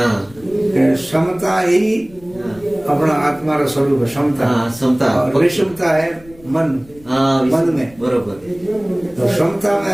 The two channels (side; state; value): left; noise; rumble, 24 dB below the sound